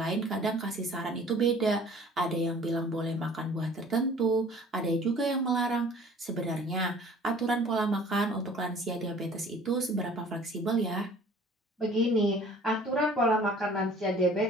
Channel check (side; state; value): both; normal; correlation 0.50